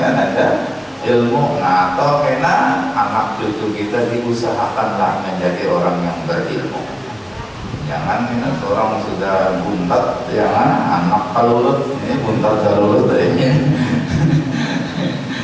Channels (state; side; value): identical; both; correlation 1.00